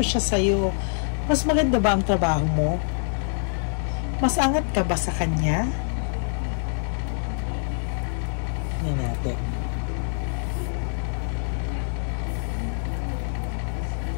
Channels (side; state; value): right; silent; digital silence